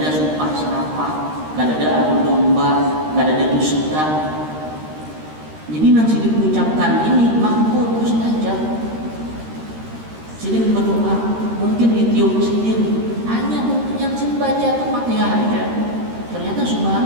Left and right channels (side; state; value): left; late; 13 ms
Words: sumpah serapah, kadada adu domba, kadada dusta. Jadi nang sidin mengucapkan ini makbul mustajab. Sidin berdoa, mungkin ditiup sidin, hanya yang sidin baca itu Fatihah aja. Ternyata